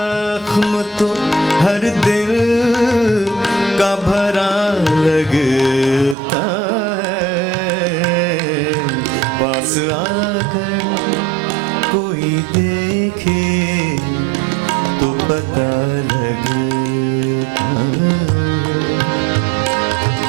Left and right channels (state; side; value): drops out; left; at 6.2 s